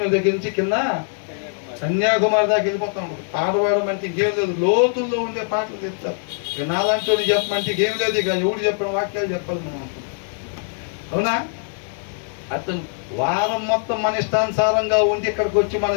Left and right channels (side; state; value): right; silent; 64 dB below the other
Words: దగ్గర నుంచి కింద కన్యాకుమారి దాకా వెళ్ళిపోతాం. పాట పాడమంటే ఇంకేం లేదు, లోతుల్లో ఉండే పాటలు చెప్తారు. ఇక నాలాంటి వాళ్ళు చెప్పమంటే ఇంకేం లేదు, ఇక ఎవడు చెప్పిన వాక్యాలు చెప్పాలి మనం అనుకుంటాం. అవునా? అతను వారం మొత్తం మన ఇష్టానుసారంగా ఉండి ఇక్కడికి వచ్చి